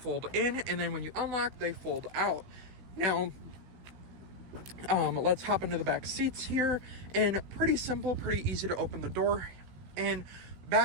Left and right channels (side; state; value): left; late; 16 ms